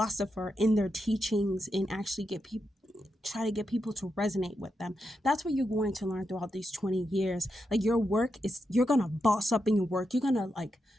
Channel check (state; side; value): normal; both; correlation 0.85